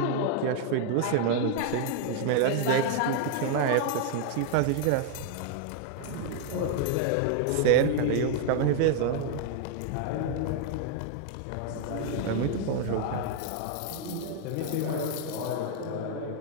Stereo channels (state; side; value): different; both; correlation 0.00